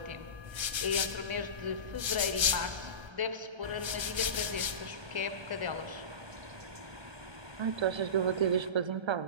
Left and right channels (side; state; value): left; late; 1.3 ms